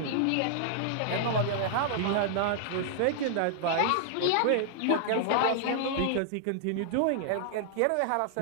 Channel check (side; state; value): both; different; correlation -0.01